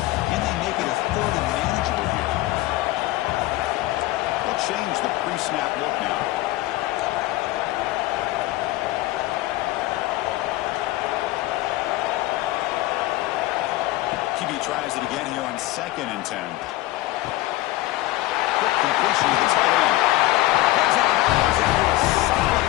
Can they make it a 3rd and manageable here? They'll change the pre-snap look now. QB tries it again here on 2nd and 10. Quick completion to the tight end. That's out of bounds after a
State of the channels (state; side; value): quieter; right; 17.4 dB